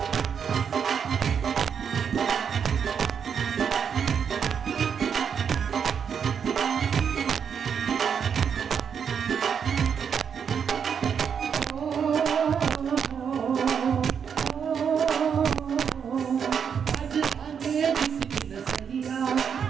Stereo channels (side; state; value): left; quieter; 7.2 dB